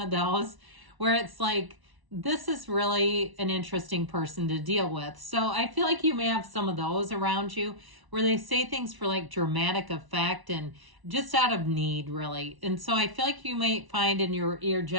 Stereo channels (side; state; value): left; late; 1.0 ms